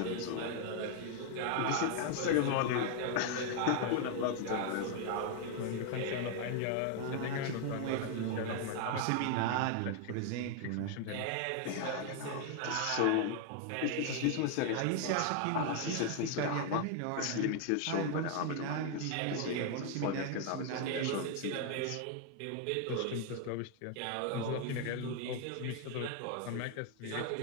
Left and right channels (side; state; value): both; different; correlation 0.00